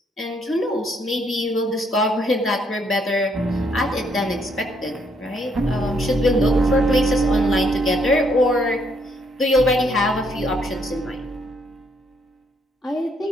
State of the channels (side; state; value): both; normal; correlation 0.71